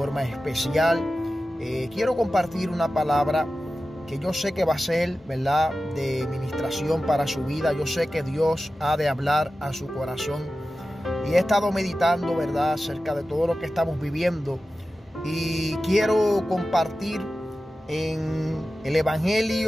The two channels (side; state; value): both; normal; correlation 0.94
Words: especial. Quiero compartir una palabra que yo sé que va a ser, ¿verdad?, de ministración para su vida. Yo sé que Dios ha de hablar a su corazón. Y he estado meditando, ¿verdad?, acerca de todo lo que estamos viviendo. Y quiero compartir en el